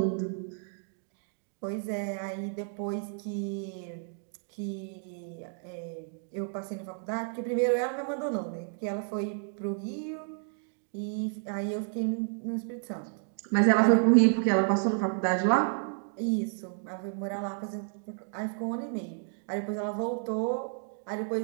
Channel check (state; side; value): silent; left; 57 dB below the other